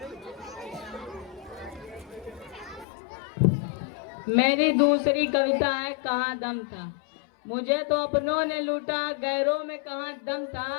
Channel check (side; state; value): right; drops out; at 2.9 s